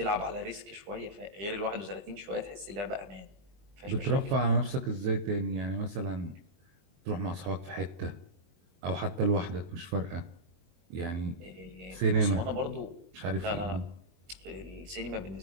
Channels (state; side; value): late; left; 22 ms